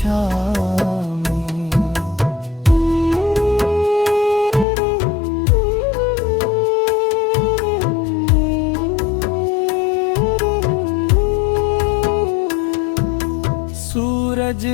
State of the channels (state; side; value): drops out; right; at 4.7 s